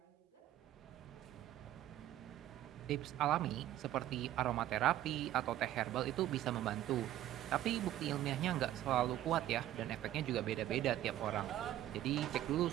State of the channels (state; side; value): quieter; left; 13.2 dB